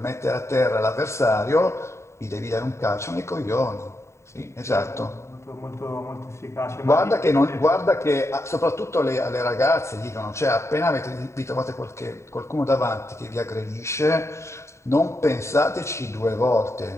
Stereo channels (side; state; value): right; late; 0.14 ms